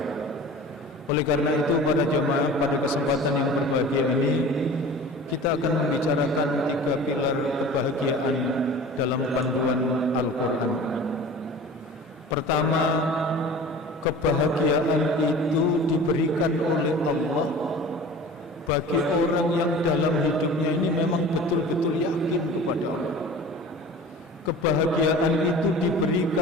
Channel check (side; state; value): both; normal; correlation 0.40